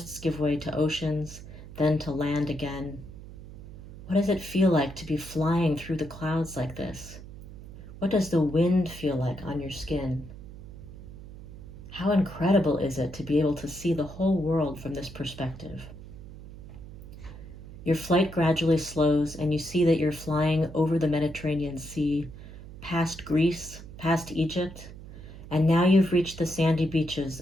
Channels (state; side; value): noise; right; hum, 15 dB below the sound